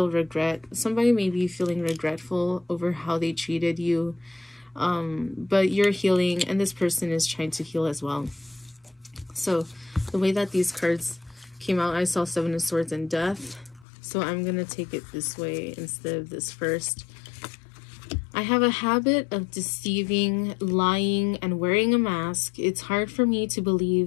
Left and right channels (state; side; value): drops out; right; at 13.9 s